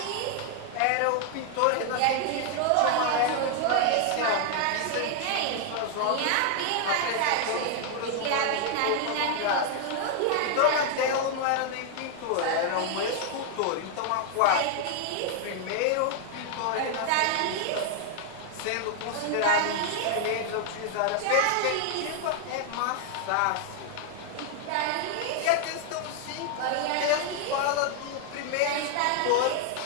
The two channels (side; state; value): both; different; correlation 0.00